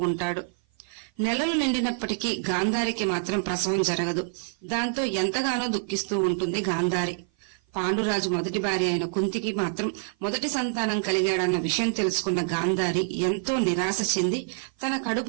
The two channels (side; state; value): left; silent; 55 dB below the other